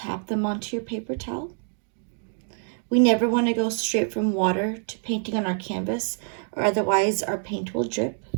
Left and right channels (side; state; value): left; silent; 56 dB below the other